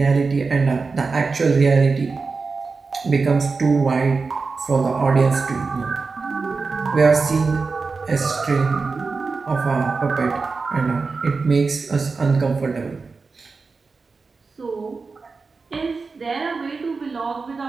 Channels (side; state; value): left; quieter; 4.4 dB